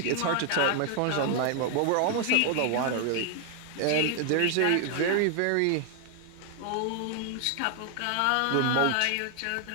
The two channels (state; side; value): different; both; correlation 0.00